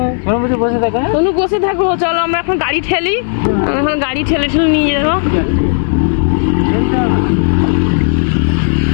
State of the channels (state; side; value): silent; right; digital silence